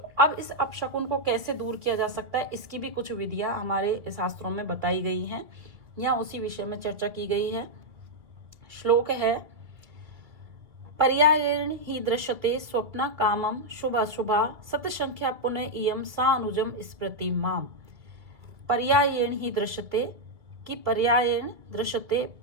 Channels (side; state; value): left; late; 2.3 ms